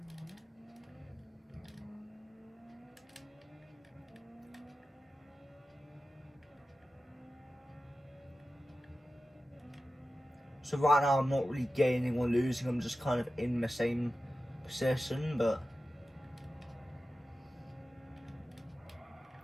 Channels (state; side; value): normal; both; correlation 0.94